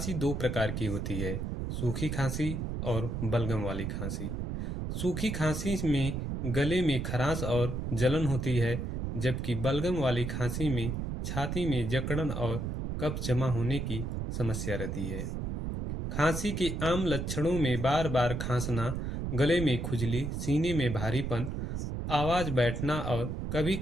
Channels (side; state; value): right; noise; rumble, 3 dB below the sound